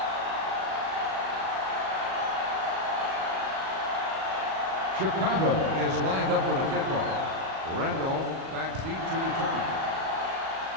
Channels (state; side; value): late; left; 37 ms